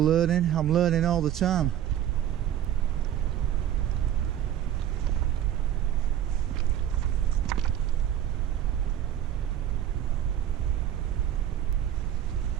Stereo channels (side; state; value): left; quieter; 11.0 dB